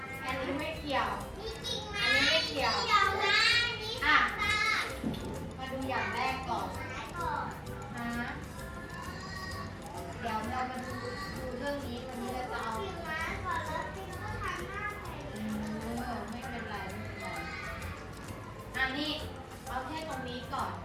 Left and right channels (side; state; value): both; identical; correlation 1.00